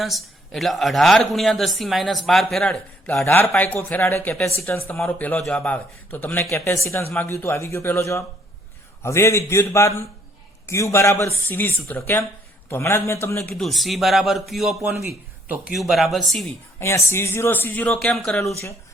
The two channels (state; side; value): normal; both; correlation 0.66